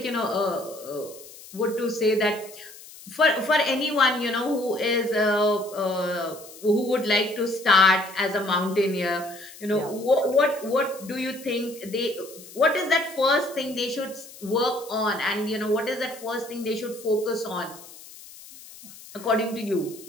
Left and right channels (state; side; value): noise; left; hiss, 18 dB below the sound